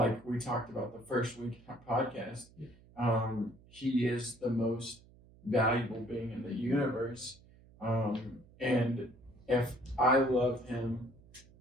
talked about the first week podcast, he is the most valuable being in the universe, and if I love him,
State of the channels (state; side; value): noise; right; hum, 25 dB below the sound